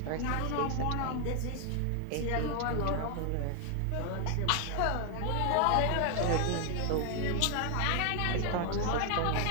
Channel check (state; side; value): different; both; correlation 0.00